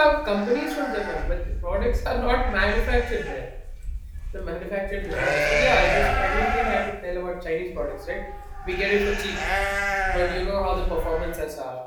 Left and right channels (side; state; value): both; identical; correlation 1.00